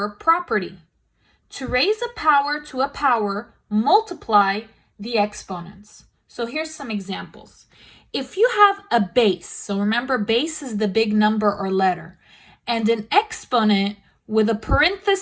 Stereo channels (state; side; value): identical; both; correlation 1.00